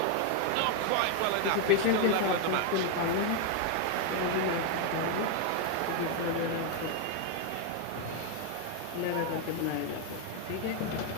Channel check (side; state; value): both; different; correlation 0.01